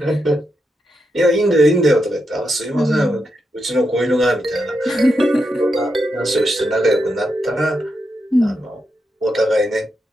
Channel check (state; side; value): normal; both; correlation 0.84